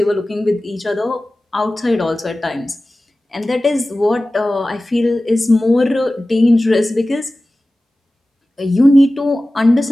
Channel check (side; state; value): both; normal; correlation 0.96